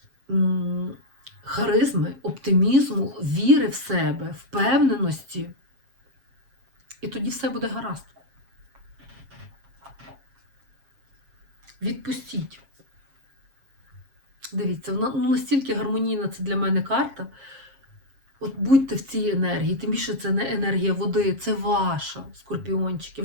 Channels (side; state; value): left; late; 7.4 ms